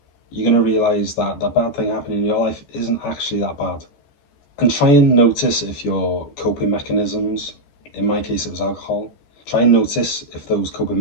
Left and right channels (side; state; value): right; late; 14 ms